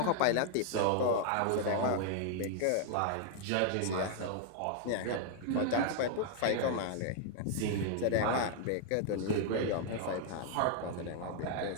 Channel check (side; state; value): both; different; correlation 0.00